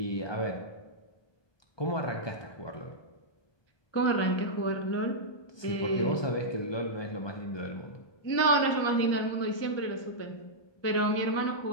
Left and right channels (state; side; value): late; right; 1.2 ms